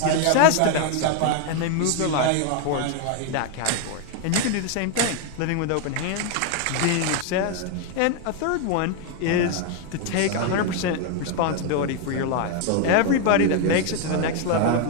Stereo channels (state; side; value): different; both; correlation 0.01